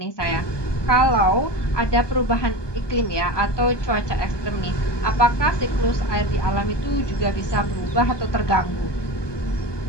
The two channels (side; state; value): right; late; 1.2 ms